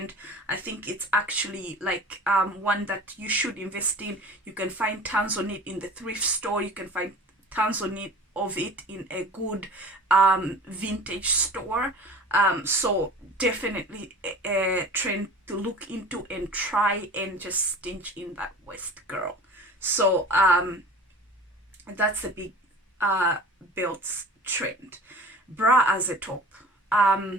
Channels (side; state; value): both; normal; correlation 0.40